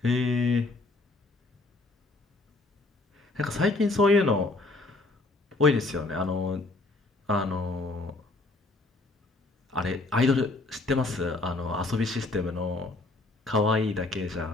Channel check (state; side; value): quieter; right; 3.1 dB